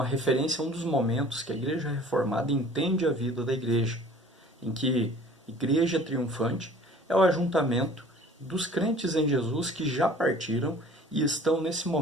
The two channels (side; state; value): both; normal; correlation 0.49